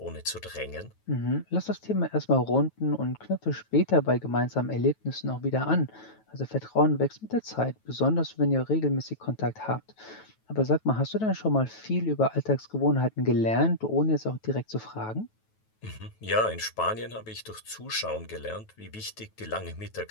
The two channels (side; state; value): right; late; 9.2 ms